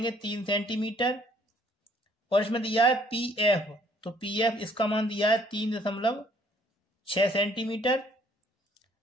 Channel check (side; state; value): both; normal; correlation 0.61